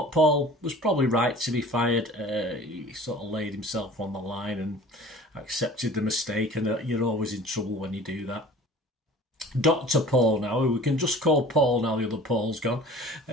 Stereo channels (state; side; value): normal; both; correlation 0.45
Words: Paul was probably right to be fired. He sort of laid himself on the line and accepted the mistake, and you're always in trouble when you do that. Dr. Paul now, we can just call Paul now, the other Paul's gone.